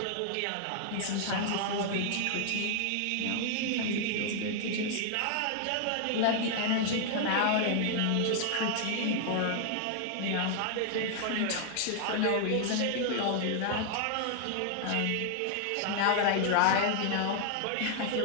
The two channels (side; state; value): both; different; correlation 0.00